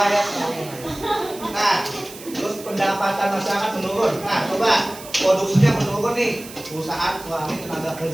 ya. Nah, terus pendapatan masyarakat menurun. Nah, coba produksinya menurun nih. Perusahaan kurangi tenaga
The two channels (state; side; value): noise; right; hiss, 16 dB below the sound